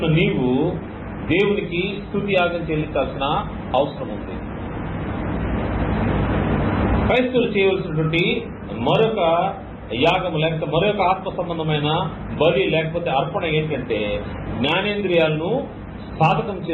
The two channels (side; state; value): both; identical; correlation 1.00